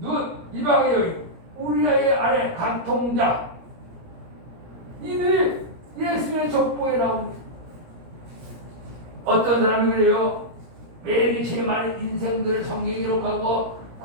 이방의 여인, 우리의 아내 간통자 이들이 예수의 족보에 나옵니다. 어떤 사람이 그래요? 매일 제일 많은 인생들을 성경에 기록하고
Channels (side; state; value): left; late; 17 ms